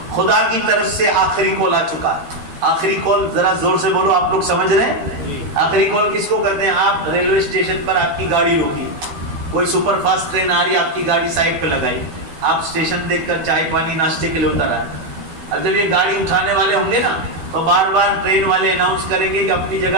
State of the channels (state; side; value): late; left; 12 ms